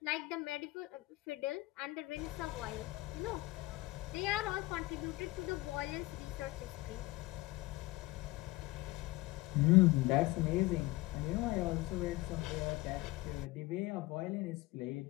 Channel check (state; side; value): quieter; right; 20.1 dB